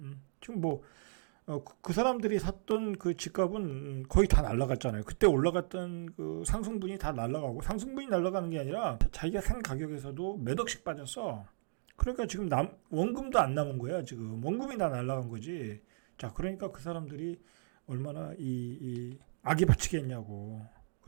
지금 그 사람들이 샀던 그 집값은 거의 다 날라갔잖아요. 그때 올라갔던 그 상승분이 다 날라가고, 상승분이 날라가는 게 아니라 자기가 산 가격에서도 몇 억씩 빠졌어. 그러니까 지금 원금도 안 남은 거야. 지금 원금이 다 날라간 거지. 자, 그러니까 그 사람들이 얼마나 이 악이 바치겠냐고.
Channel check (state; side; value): silent; left; digital silence